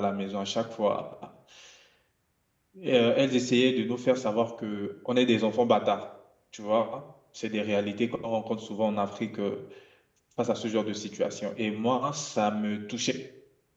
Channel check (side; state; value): both; identical; correlation 1.00